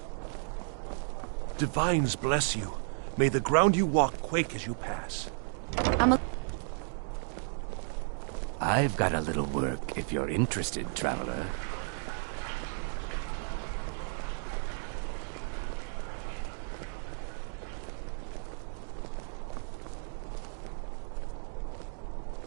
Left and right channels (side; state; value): left; silent; 56 dB below the other